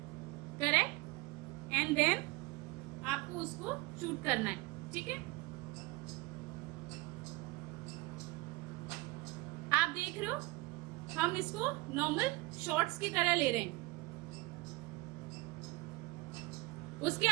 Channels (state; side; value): quieter; left; 22.7 dB